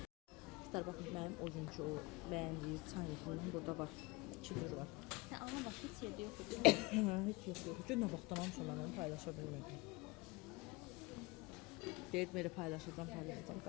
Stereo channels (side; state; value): right; quieter; 24.1 dB